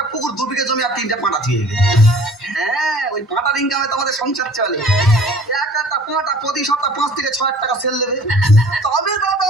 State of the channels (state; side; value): normal; both; correlation 0.49